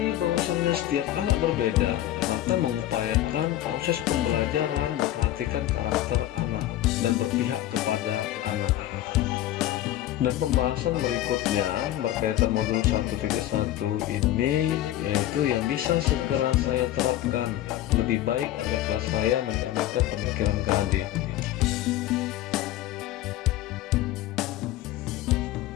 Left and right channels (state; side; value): quieter; right; 13.7 dB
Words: bahwasannya setiap anak berbeda, maka mengupayakan proses pembelajaran memperhatikan karakter anak dan berpihak kepada anak. Dan pembahasan berikutnya berkaitan modul 1.1 ini, yaitu yang bisa segera saya terapkan lebih baik agar kelas saya mencerminkan pemikiran KHD.